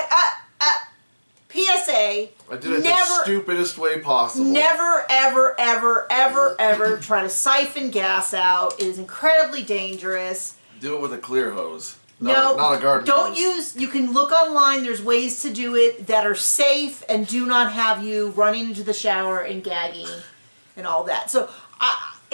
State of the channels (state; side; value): inverted; both; correlation -1.00